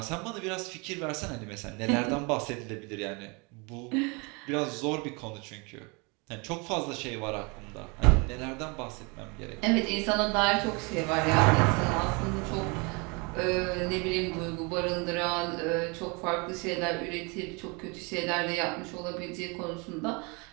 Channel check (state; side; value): quieter; left; 30.1 dB